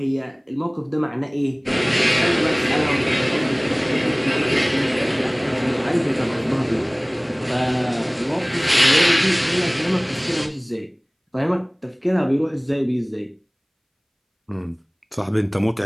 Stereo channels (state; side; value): identical; both; correlation 1.00